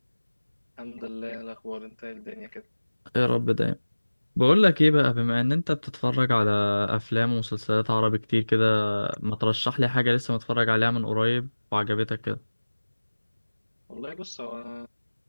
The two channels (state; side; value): inverted; both; correlation -1.00